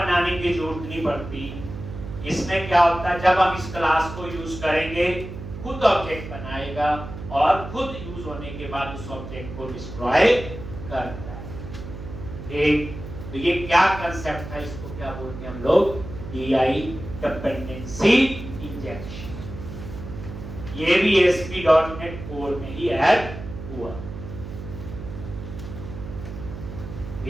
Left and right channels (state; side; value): noise; right; hum, 10 dB below the sound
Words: की जरूरत नहीं पड़ती। इसमें क्या होता है, जब हम इस क्लास को यूज करेंगे खुद ऑब्जेक्ट बनाएगा, और खुद यूज होने के बाद उस ऑब्जेक्ट को डिस्ट्रॉय करता है। एक तो ये क्या कंसेप्ट है, इसको क्या बोलते हैं हम लोग, टीआई, डिपेंडेंसी इंजेक्शन। ये भी ASP.NET कोर में ही ऐड हुआ।